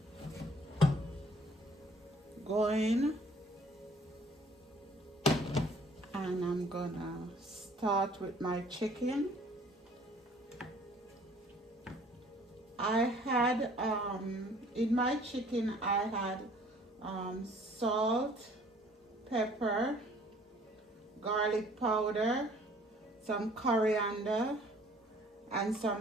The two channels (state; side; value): normal; both; correlation 0.56